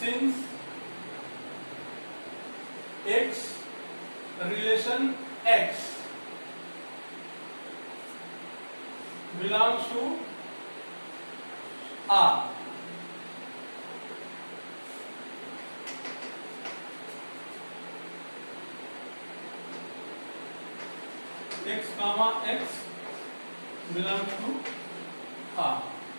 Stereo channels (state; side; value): inverted; both; correlation -1.00